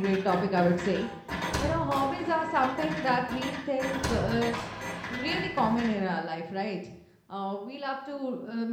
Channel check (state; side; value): identical; both; correlation 1.00